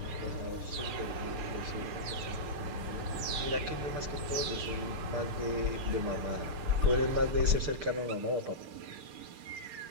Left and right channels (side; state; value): left; late; 6.7 ms